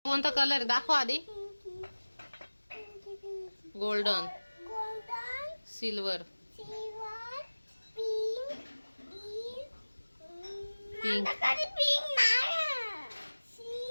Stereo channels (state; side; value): inverted; both; correlation -1.00